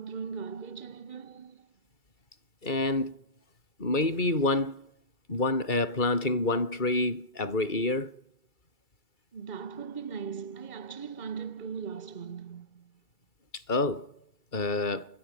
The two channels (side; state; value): right; late; 2.3 ms